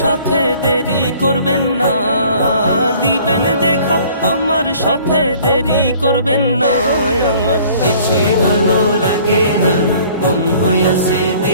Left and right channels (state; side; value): inverted; both; correlation -0.53